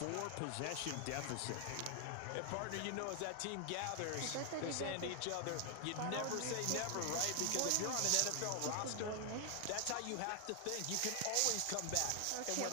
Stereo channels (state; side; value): different; both; correlation 0.00